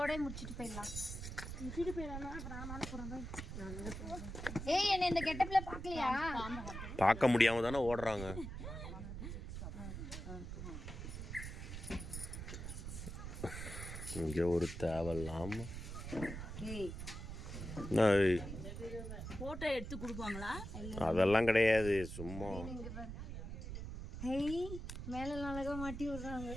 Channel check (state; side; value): noise; right; rumble, 7 dB below the sound